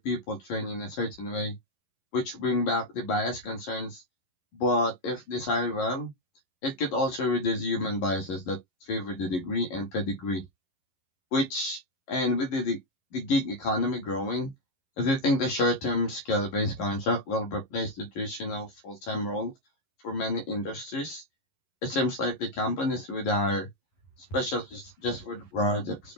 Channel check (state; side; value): late; right; 11 ms